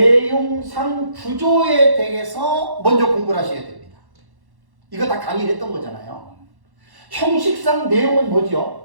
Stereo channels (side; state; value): left; late; 1.1 ms